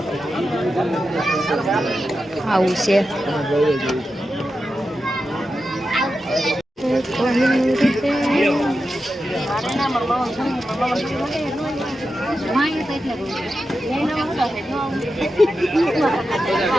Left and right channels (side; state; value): both; normal; correlation 0.90